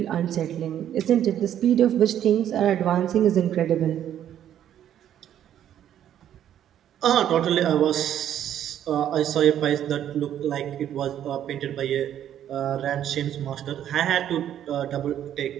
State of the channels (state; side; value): quieter; left; 10.6 dB